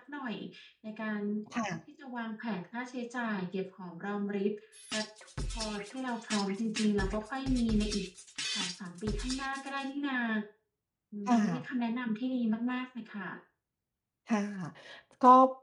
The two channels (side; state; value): both; identical; correlation 1.00